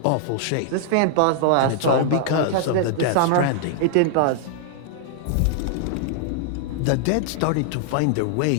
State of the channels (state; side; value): different; both; correlation -0.01